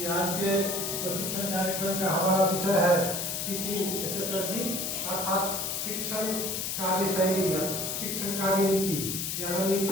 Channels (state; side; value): noise; left; hiss, 2 dB below the sound